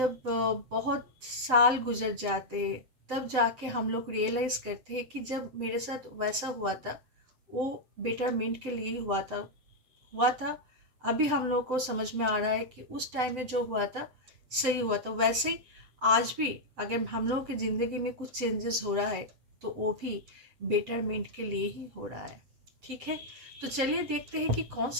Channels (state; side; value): late; left; 7.8 ms